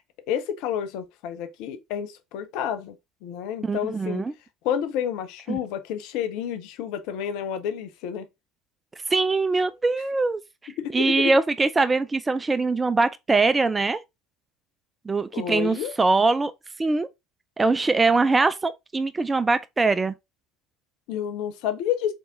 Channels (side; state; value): both; normal; correlation 0.80